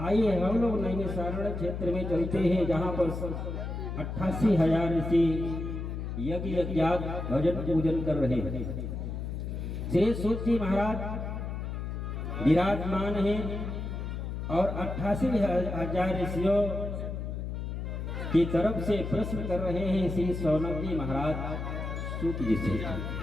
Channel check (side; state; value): left; noise; hum, 5 dB below the sound